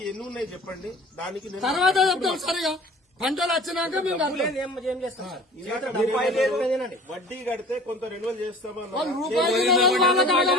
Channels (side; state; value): both; normal; correlation 0.44